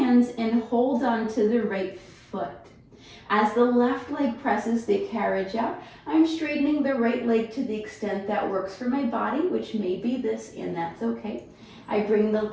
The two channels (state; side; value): identical; both; correlation 1.00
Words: and hold on to the right foot. As the left leg presses the carriage out, I'm straightening the right leg to the extent that works for my body, which may be this, and that's okay. I bring the